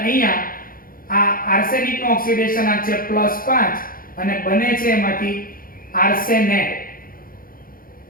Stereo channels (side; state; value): right; late; 0.41 ms